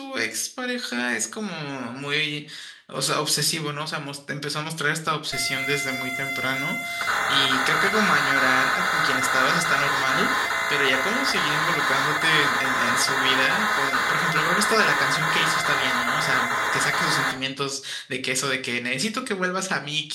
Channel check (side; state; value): both; identical; correlation 1.00